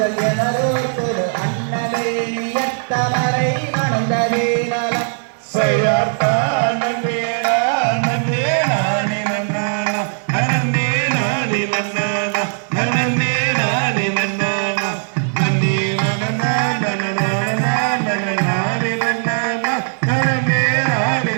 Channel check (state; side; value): silent; left; digital silence